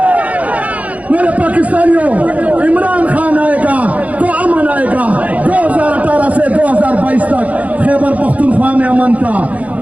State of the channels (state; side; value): late; left; 0.069 ms